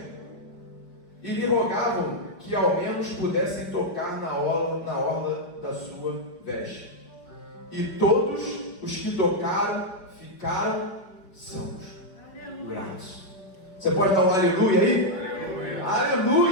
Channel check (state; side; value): late; right; 5.2 ms